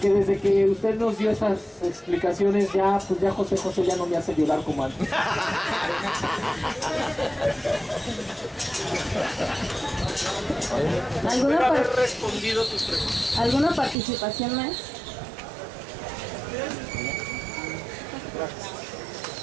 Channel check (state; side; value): drops out; left; at 14.0 s